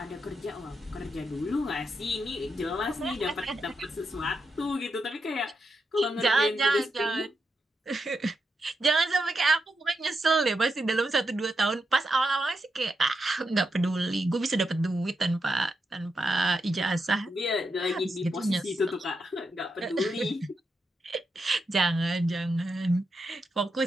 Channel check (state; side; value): normal; both; correlation 0.85